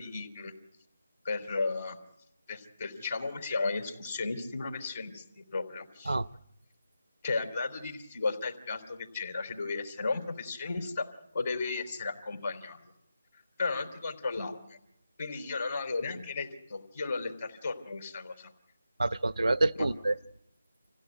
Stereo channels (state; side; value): inverted; both; correlation -0.89